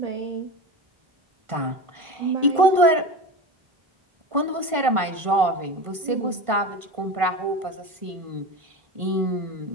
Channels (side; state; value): left; late; 1.5 ms